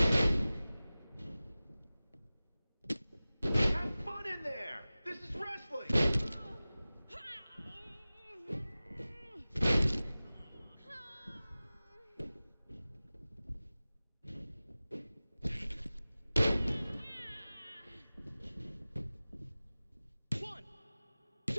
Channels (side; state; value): both; inverted; correlation -0.97